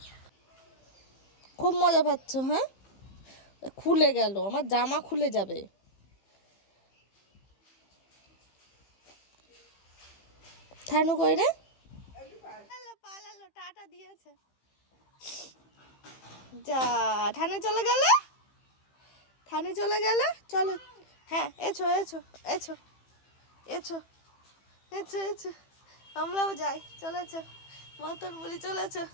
খুব মজা পাচ্ছ? হ্যাঁ খুলে গেল, আমার জামা খুলে যাবে। থানু কই রে? পালালো, টাটা দিয়েছে। যা থানু চলে গেল, থানু চলে গেল। চলো হ্যাঁ, এছো এছো এছো এছো এছো এছো, আমরাও যাই। চলেছো মতন বলি, চলেছো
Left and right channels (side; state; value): right; late; 15 ms